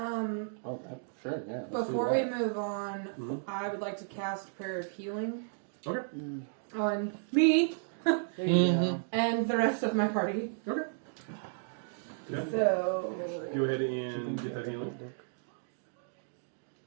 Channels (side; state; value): left; silent; digital silence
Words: sure, yeah. let's do Before we that. move on, I would like to cast Prayer of Healing Okay. on me There you go. and the rest of my party. Okay. Okay. So, Go ahead and get that healing.